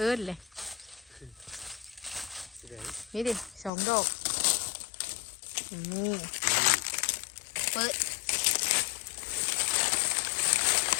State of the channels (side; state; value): right; drops out; at 3.7 s